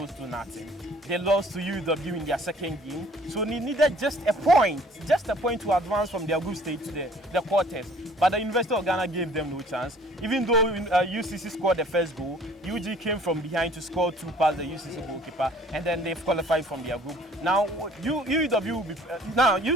to nothing. They lost to UW in their second game, so they needed just a point to advance from their group stage to the quarters. But the University of Ghana gave them no chance. Even though UCC scored the first goal, UG came from behind to score 2 past the UCC goalkeeper, and then they've qualified from their group. Now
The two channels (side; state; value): both; normal; correlation 0.54